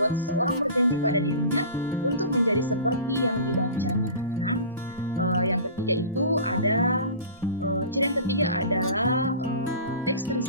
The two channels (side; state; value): both; inverted; correlation -0.37